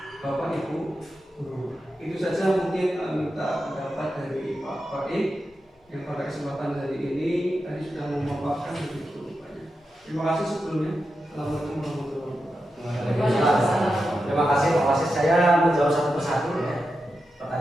Bapak Ibu guru. Itu saja mungkin minta pendapat dari Pak Faik yang pada kesempatan hari ini tadi sudah memaparkan begitu banyak. Terima kasih sebelumnya. Assalamualaikum warahmatullahi wabarakatuh. Terima kasih Pak Wasis. Saya menjawab satu persatu ya.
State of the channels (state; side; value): normal; both; correlation 0.89